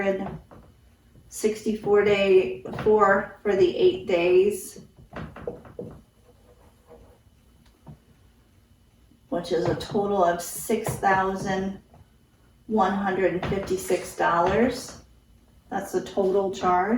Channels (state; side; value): identical; both; correlation 1.00